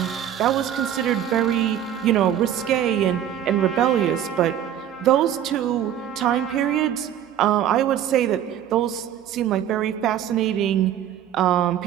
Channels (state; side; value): quieter; left; 10.4 dB